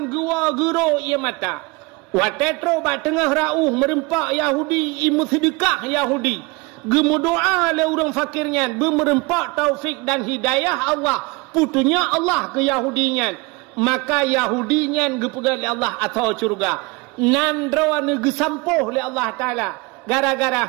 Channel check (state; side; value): quieter; left; 25.9 dB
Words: gua gero ia mata. Watetro ba tengah rauh merempak Yahudi imu sedekah Yahudi. Gemu doa le orang fakirnya bermerempak taufik dan hidayah Allah. Putunya Allah ke Yahudinya. Maka Yahudinya gepegal le Allah atau surga. Nan rawan gesampuh le Allah Taala. Gara-gara